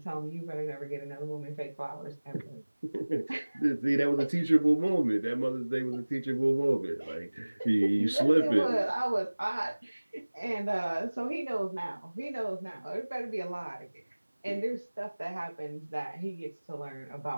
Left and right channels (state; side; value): inverted; both; correlation -1.00